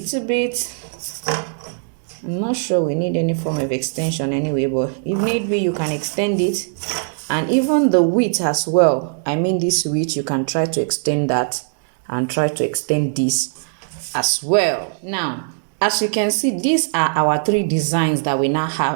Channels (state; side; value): silent; left; digital silence